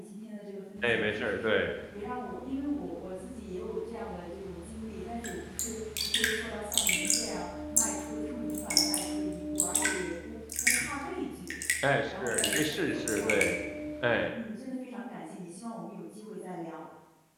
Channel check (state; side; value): identical; both; correlation 1.00